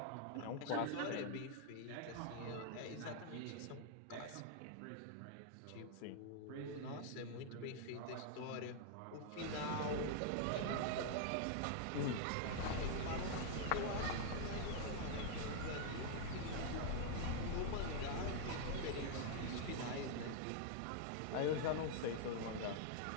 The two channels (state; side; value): different; both; correlation 0.00